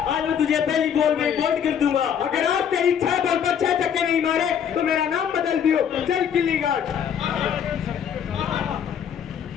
आज मैं तुझे पहली बॉल में आउट कर दूंगा। अगर आप तेरी 6 बॉल पर 6 छक्के नहीं मारे तो मेरा नाम बदल दियो। चल गिल्ली गार्ड।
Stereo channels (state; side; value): quieter; right; 8.3 dB